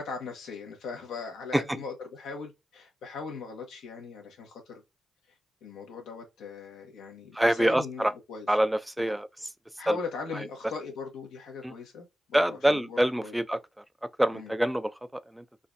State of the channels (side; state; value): both; normal; correlation 0.94